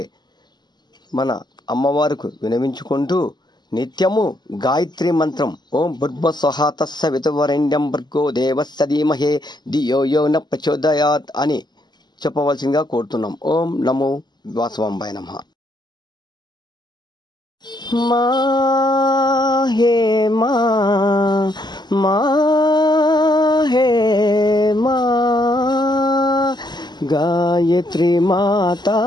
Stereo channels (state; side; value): late; right; 0.21 ms